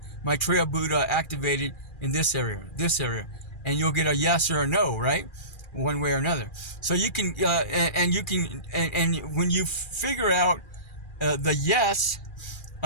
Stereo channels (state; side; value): late; right; 2.4 ms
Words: Maitreya Buddha activated in this area? And you'll get a yes or a no, right? One way or another. So you can, and when you figure out the yes,